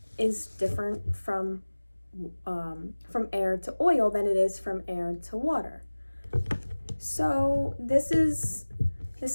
is different from air to oil than it is from air to water. So this is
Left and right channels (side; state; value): both; inverted; correlation -1.00